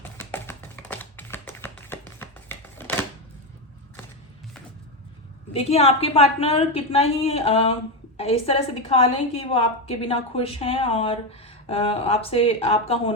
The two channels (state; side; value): normal; both; correlation 0.11